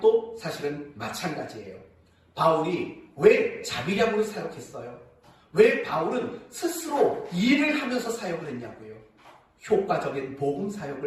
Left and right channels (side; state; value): both; identical; correlation 1.00